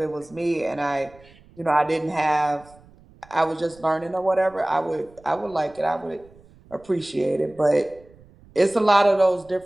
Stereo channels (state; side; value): noise; right; rumble, 26 dB below the sound